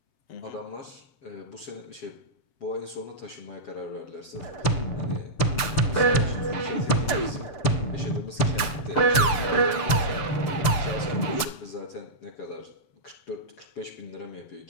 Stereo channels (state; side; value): late; right; 7.6 ms